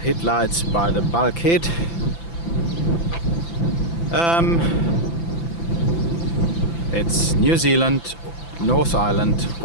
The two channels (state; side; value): late; right; 5.9 ms